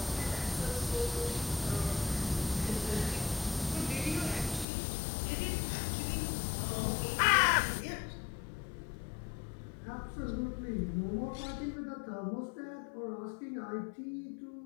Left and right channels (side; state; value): right; drops out; at 4.7 s